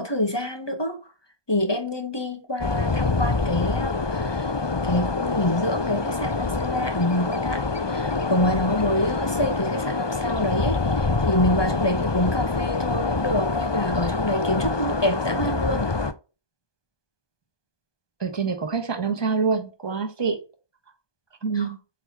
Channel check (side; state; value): right; late; 1.2 ms